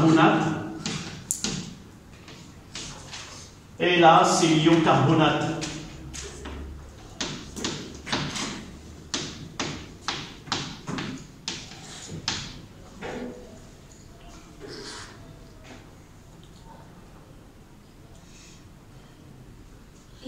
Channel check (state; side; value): identical; both; correlation 1.00